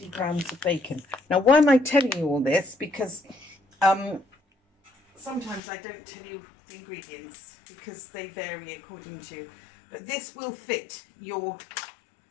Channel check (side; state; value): right; drops out; at 5.6 s